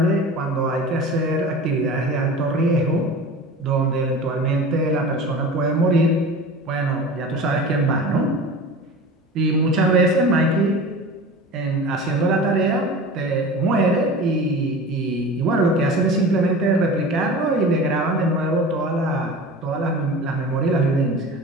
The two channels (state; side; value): normal; both; correlation 0.35